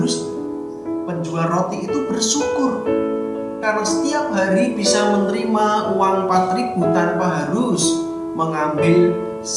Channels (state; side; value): identical; both; correlation 1.00